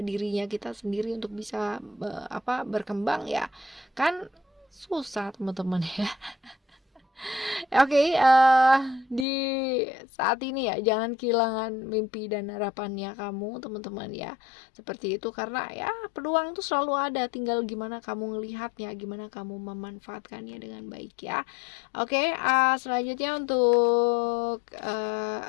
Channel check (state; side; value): drops out; right; at 9.2 s